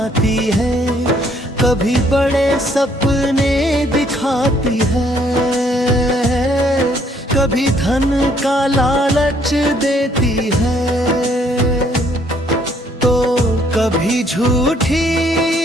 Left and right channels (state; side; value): normal; both; correlation 0.65